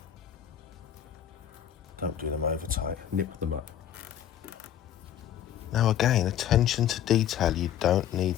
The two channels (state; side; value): quieter; right; 10.3 dB